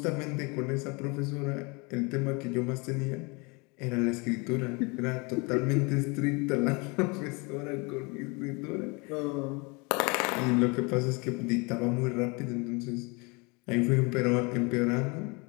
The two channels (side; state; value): right; quieter; 29.0 dB